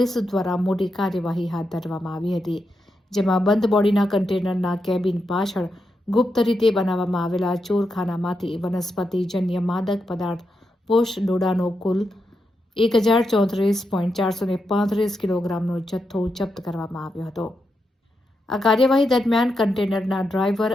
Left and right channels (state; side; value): normal; both; correlation 0.85